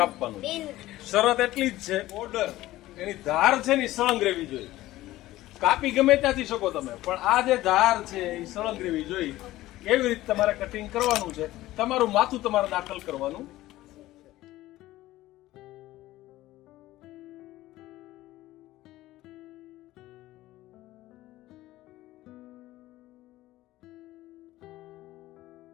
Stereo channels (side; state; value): right; quieter; 16.3 dB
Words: શરત એટલી જ છે, બોર્ડર એની ધાર છે ને સળંગ રહેવી જોઈએ. કાપી ગમે ત્યાંથી શકો તમે, પણ આ જે ધાર છે એ સળંગ રહેવી જોઈએ. એવી રીતે તમારે કટિંગ કરવાનું છે. તમારું માથું તમારે દાખલ કરવાનું.